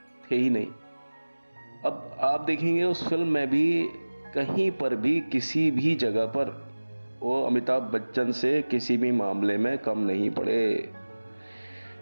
थे ही नहीं। अब आप देखेंगे उस फिल्म में भी कहीं पर भी किसी भी जगह पर वो अमिताभ बच्चन से किसी भी मामले में कम नहीं पड़े।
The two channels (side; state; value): both; inverted; correlation -1.00